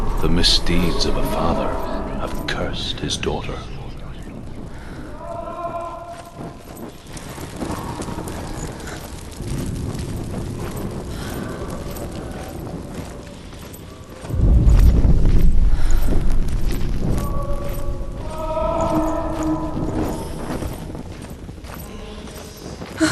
the misdeeds of a father have cursed his daughter.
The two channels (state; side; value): identical; both; correlation 1.00